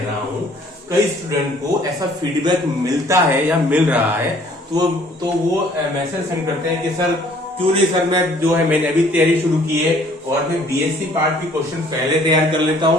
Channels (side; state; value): both; normal; correlation 0.58